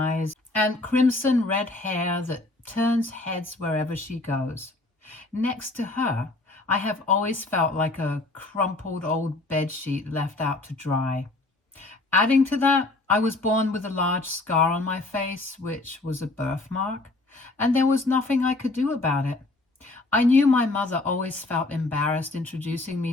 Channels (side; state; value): right; quieter; 3.0 dB